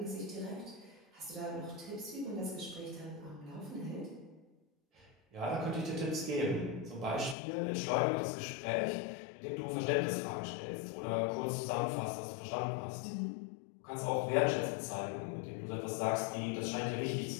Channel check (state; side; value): drops out; right; at 7.4 s